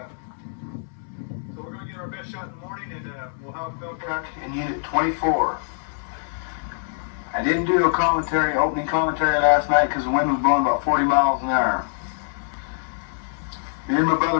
so we're going to get our best shot in the morning, and we'll have a film truck in Unit 24. I didn't do a opening commentary last night because the wind was blowing about 40 miles an hour. Me and my brother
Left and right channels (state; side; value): silent; right; 62 dB below the other